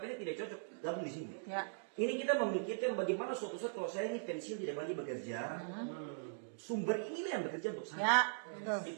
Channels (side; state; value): left; silent; digital silence